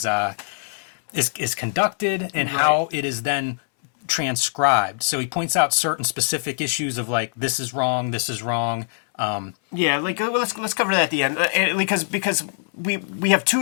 conducted and how it is then transcribed. So he points out certain specific issues of like, this is wrong, this is wrong. Yeah, like let's cover that at the end, because we have 2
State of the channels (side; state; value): right; silent; 64 dB below the other